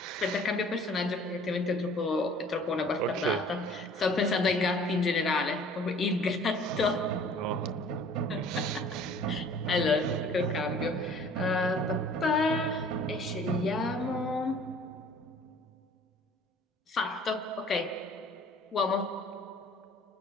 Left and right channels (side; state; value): both; normal; correlation 0.51